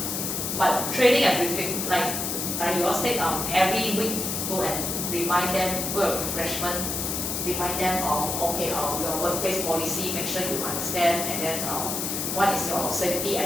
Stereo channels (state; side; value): noise; left; hiss, 2 dB below the sound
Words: But training and briefing, like you all said, every week go and remind them, go a refreshment, remind them okay, your workplace policy, make sure you understand, and then what is your safety